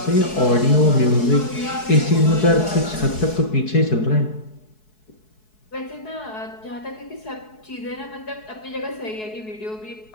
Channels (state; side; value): late; right; 4.7 ms